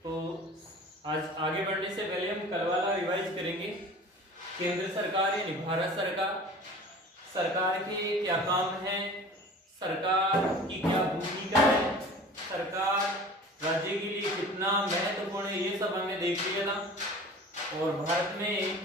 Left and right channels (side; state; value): both; normal; correlation 0.42